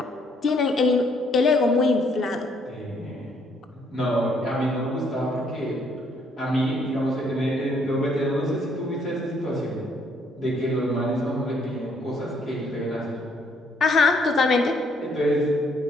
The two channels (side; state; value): both; normal; correlation 0.68